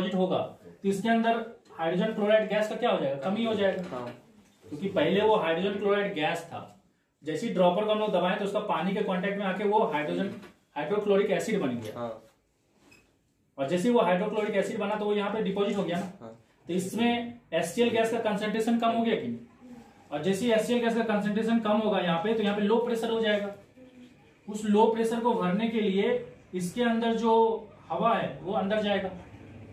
होगा तो इसके अंदर हाइड्रोजन क्लोराइड गैस का क्या हो जाएगा, कमी हो जाएगा, क्योंकि पहले वो हाइड्रोजन क्लोराइड गैस था। जैसे ही ड्रॉपर को हम लोग दबाएं तो उसका पानी के कांटेक्ट में आके वो हाइड्रोक्लोरिक एसिड बन गया। और जैसे वो हाइड्रोक्लोरिक एसिड बना तो वो यहाँ पे डिपॉजिट हो गया ना, तो इसमें HCl गैस का कंसंट्रेशन कम हो गया कि नहीं। और जैसे ही HCl गैस का कंसंट्रेशन कम होगा यहाँ पे, तो यहाँ पे लो प्रेशर हो जाएगा। उस लो प्रेशर को भरने के लिए इसके अंदर जो हवा है वो अंदर जाएगा,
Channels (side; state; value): both; identical; correlation 1.00